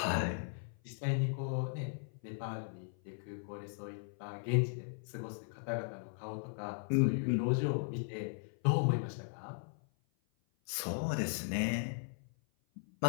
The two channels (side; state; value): right; silent; 53 dB below the other